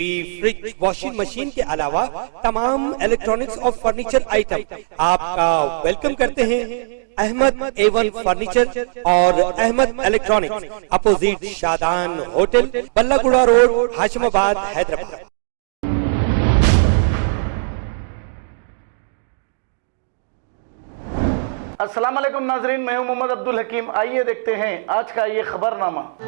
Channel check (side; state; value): left; silent; digital silence